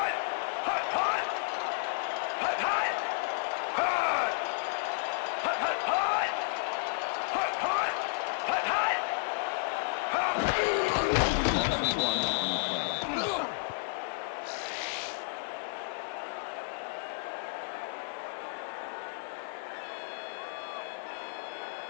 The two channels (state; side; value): silent; right; 56 dB below the other